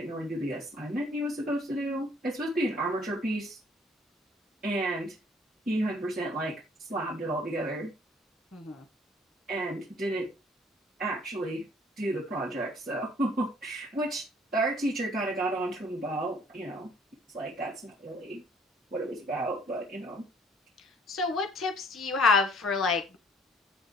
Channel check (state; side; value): normal; both; correlation 0.59